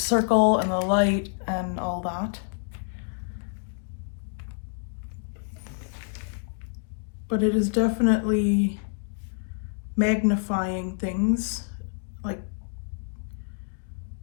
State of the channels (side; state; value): right; silent; digital silence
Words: and the light and all that. But it is definitely magnifying things, like